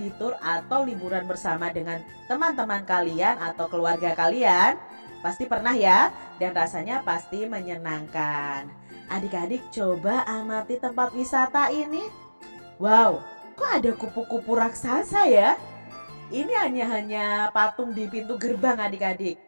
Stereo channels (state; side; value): inverted; both; correlation -1.00